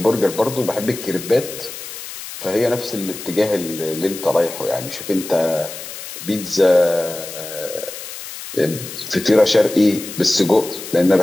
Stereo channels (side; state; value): left; noise; hiss, 11 dB below the sound